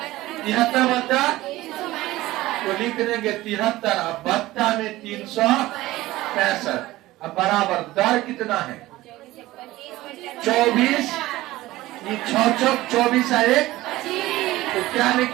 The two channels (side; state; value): left; quieter; 17.4 dB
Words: 73 बच्चा तो लिख देंगे 73। अब बच्चा में 365। अब बराबर दर कितना है? 24। ये 6 चौक 24 है 1, तो क्या